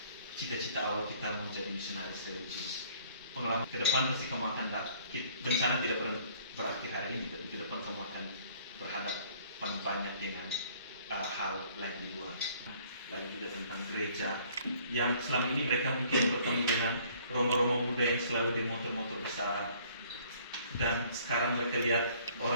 cita-cita awal kita menjadi misionaris religius. Pengalaman ke depan pasti kamu akan bencana tidak pernah berakhir hari ini, tapi ke depan kamu akan berhadapan banyak dengan hal lain di luar. Lalu juga tentang gereja yang selama ini mereka mungkin bertemu dengan romo-romo muda yang selalu di motor-motor besar, dan sekarang mereka lihat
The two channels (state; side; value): inverted; both; correlation -0.57